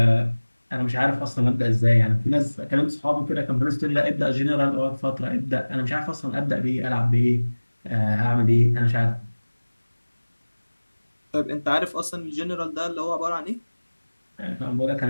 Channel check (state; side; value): inverted; both; correlation -1.00